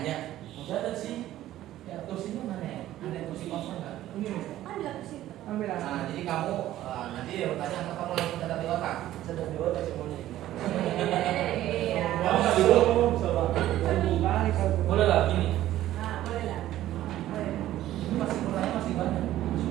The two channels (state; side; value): quieter; left; 13.9 dB